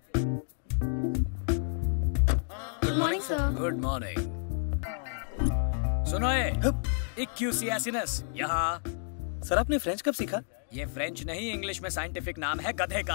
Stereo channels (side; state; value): right; silent; digital silence